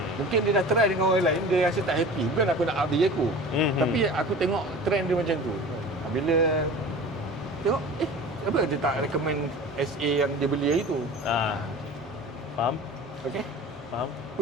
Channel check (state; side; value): normal; both; correlation 0.38